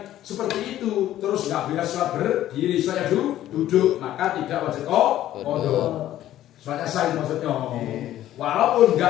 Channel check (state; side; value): quieter; right; 13.0 dB